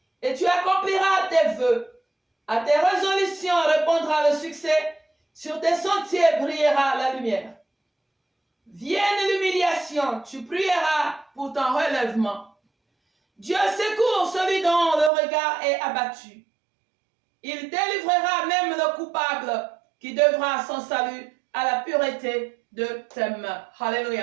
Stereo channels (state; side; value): drops out; left; at 15.1 s